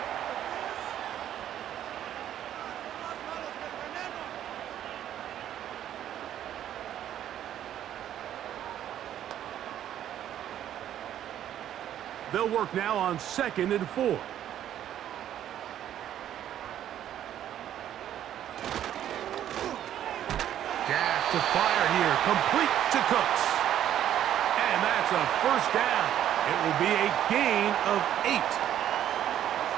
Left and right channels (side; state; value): left; quieter; 11.1 dB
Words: They'll work now on 2nd and 4. To fire here, complete to Cooks. And that's a 1st down. It will be a gain of 8.